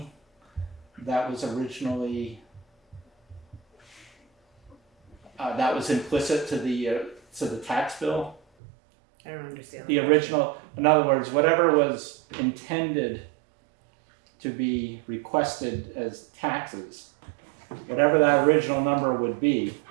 that was originally, that was implicit to the tax bill? I don't understand. The original, in other words, whatever was intended to be requested as taxes, whatever that original number would be,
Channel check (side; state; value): left; drops out; at 8.4 s